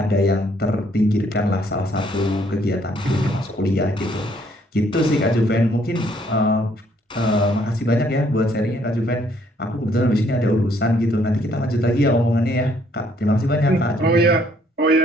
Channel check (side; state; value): both; normal; correlation 0.66